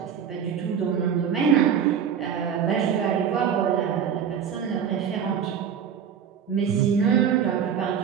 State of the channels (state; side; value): quieter; left; 7.9 dB